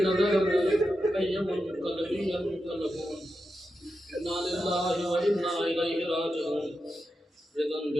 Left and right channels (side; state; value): both; normal; correlation 0.89